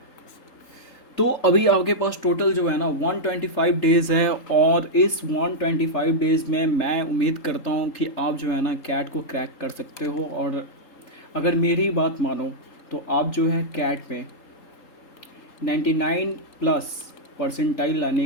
तो अभी आपके पास टोटल जो है ना 125 डेज़ है, और इस 125 डेज़ में मैं उम्मीद करता हूँ कि आप जो है ना कैट को क्रैक कर सकते हो। और अगर मेरी बात मानो तो आप जो है कैट में 99 प्लस परसेंटाइल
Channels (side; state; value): right; late; 3.8 ms